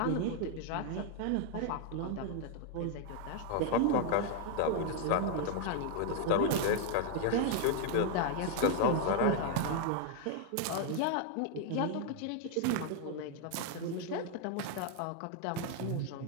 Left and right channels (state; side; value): different; both; correlation 0.00